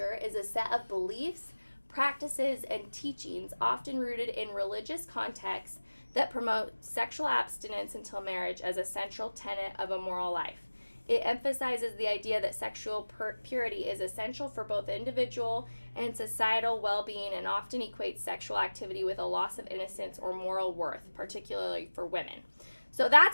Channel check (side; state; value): both; inverted; correlation -1.00